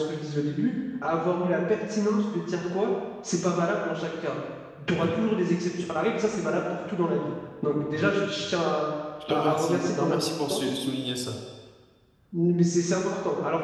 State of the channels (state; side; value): identical; both; correlation 1.00